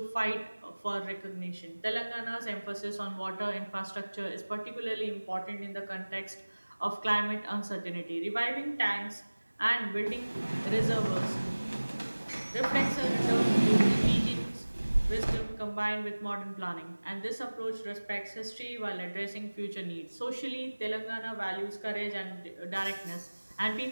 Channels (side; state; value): both; inverted; correlation -1.00